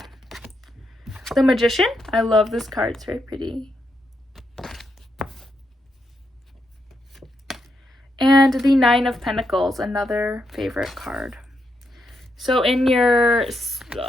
The Magician. I love this card. It's very pretty. And the Nine of Pentacles, another favorite card. So in your,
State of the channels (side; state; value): both; normal; correlation 0.81